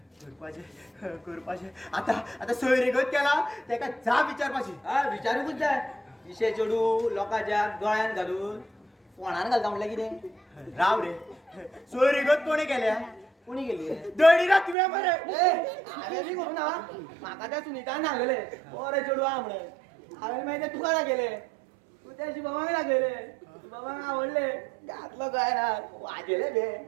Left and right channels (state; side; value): drops out; left; at 14.8 s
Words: करपाचे आता सोयरीगत केला तेका जाप विचारपाची. हा विचारूकूच जाय विशे चेडू लोकांच्या गळ्यान घालून फोणान घालता म्हणल्यार कितें राव रे सोयरीगत कोणी केल्या कोणी गेली दळीरा तुवें मरे. हांवें बी करूं ना म्हाका त्या सुनीतान सांगले बरे चेडू आहा म्हणून हांवें मागीर ते तुका दाखयले तू त्या शिवबाबाक दाखयले शिवबाबाक आवडले घातलो गळ्यान वाजयले बे